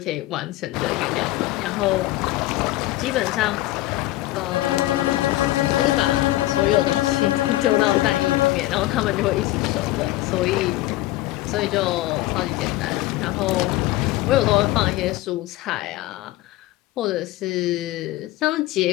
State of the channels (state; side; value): quieter; right; 16.8 dB